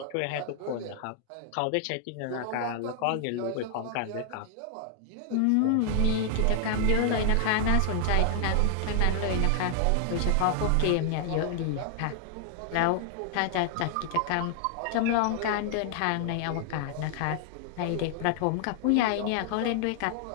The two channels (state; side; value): different; both; correlation 0.00